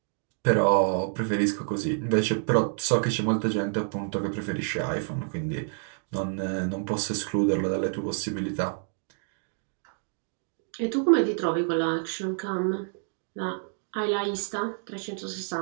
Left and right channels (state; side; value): silent; left; 56 dB below the other